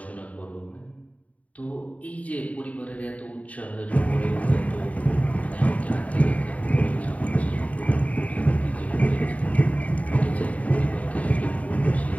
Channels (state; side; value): late; right; 0.069 ms